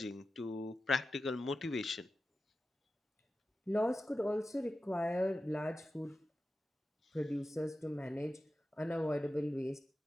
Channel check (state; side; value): normal; both; correlation 0.93